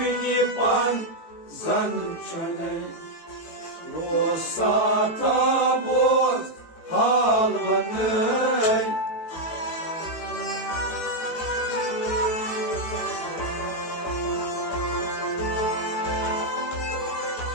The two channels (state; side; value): late; right; 18 ms